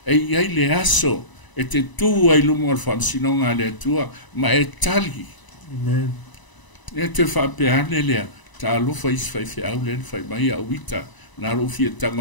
E iai le aso e te tua i lumo al whamsinonga le tua ma e tali. Amen. E te whapeane lea ta alofa is fai fe au len fai mai a wita na rofi e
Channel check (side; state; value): right; late; 1.0 ms